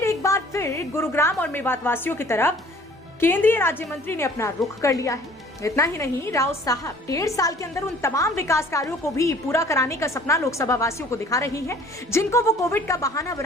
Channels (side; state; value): both; normal; correlation 0.53